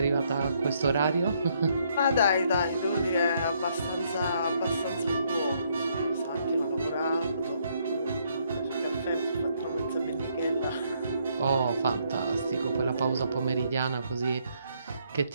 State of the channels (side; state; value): both; inverted; correlation -0.71